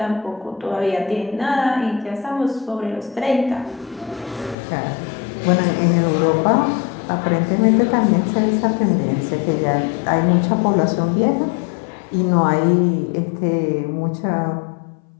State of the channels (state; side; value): drops out; right; at 4.5 s